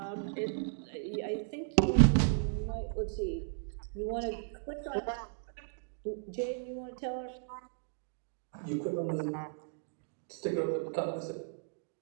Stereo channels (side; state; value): left; silent; digital silence